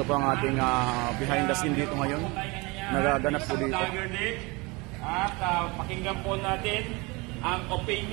po ang ating behind the scene dito ngayon. Nagaganap po dito. At pakinggan po natin ang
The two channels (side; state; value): left; quieter; 25.9 dB